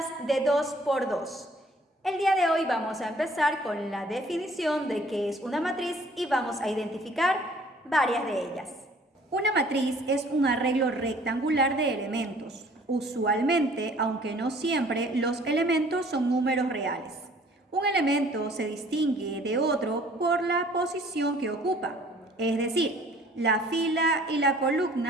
de 2 por 2. El día de hoy vamos a empezar con la definición de qué es una matriz y vamos a identificar varias de ellas. Una matriz es un arreglo rectangular de elementos. Usualmente, aunque no siempre, los elementos son números reales. Un elemento se distingue de otro por la posición que ocupa, es decir, la fila y la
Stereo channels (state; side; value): normal; both; correlation 0.55